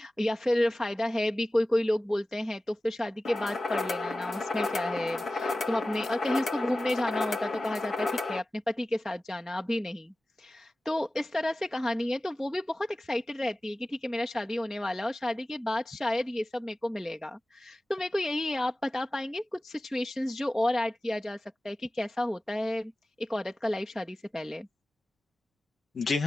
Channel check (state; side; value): normal; both; correlation 0.96